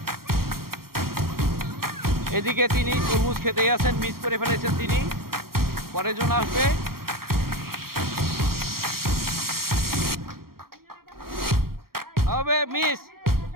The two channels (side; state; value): left; late; 0.93 ms